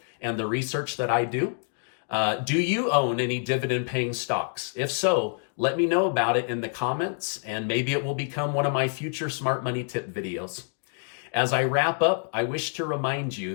and the research that I do? Do you own any dividend-paying stocks? If so, let me know about it in the comments, and maybe it will become one of my future Smart Money Tip videos. As I wrap up, I wish to remind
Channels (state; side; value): silent; right; 57 dB below the other